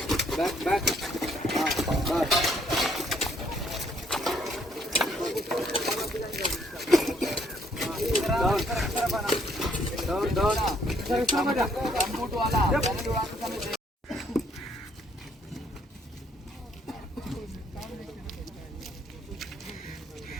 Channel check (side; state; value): both; normal; correlation 0.67